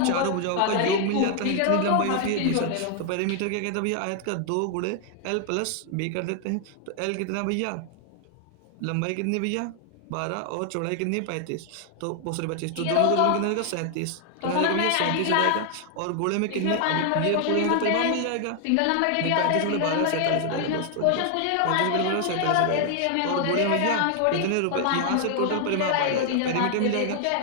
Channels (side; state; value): both; different; correlation 0.00